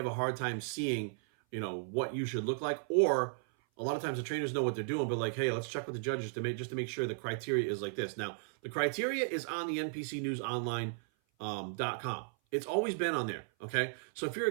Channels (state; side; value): silent; left; 54 dB below the other